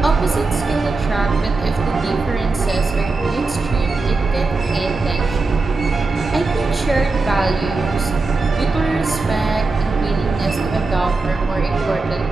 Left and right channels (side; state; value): left; quieter; 3.6 dB